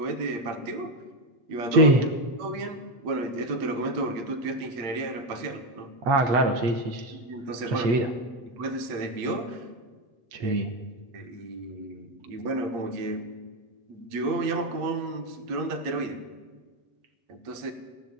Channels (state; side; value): late; left; 8.6 ms